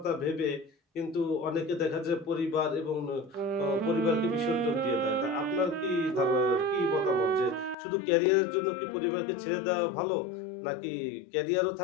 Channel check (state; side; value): drops out; right; at 7.8 s